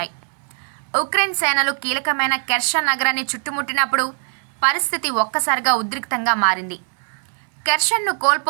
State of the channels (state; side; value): silent; left; 65 dB below the other